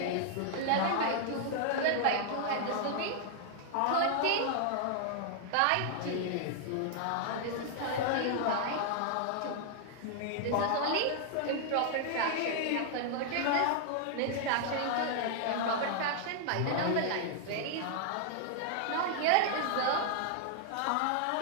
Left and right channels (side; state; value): both; different; correlation 0.00